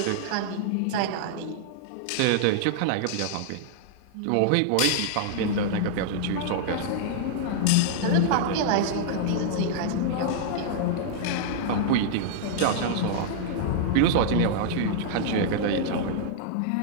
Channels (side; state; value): both; different; correlation -0.01